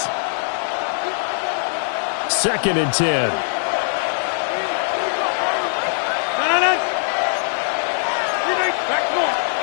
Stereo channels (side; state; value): right; silent; digital silence